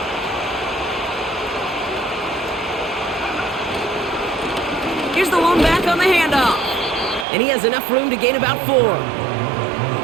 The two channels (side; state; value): left; drops out; at 7.2 s